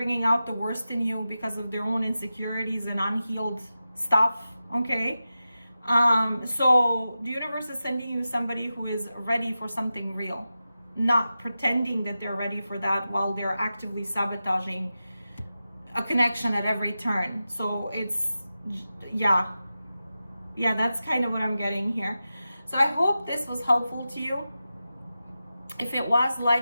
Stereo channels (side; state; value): both; inverted; correlation -0.92